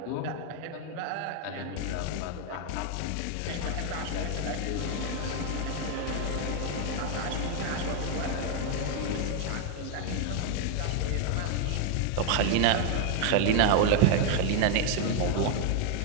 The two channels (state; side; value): different; both; correlation 0.00